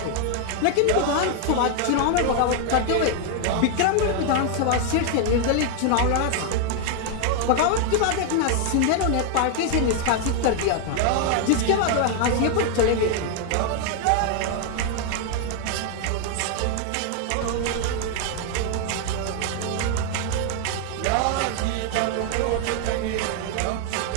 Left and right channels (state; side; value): different; both; correlation 0.00